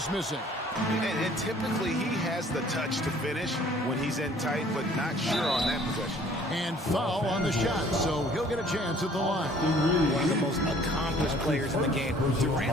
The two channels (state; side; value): normal; both; correlation 0.55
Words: missing. And typically he has the touch to finish when he's in tight, but not sure on that possession. And foul on the shot, so he'll get a chance at the line. One of the most accomplished players in the game.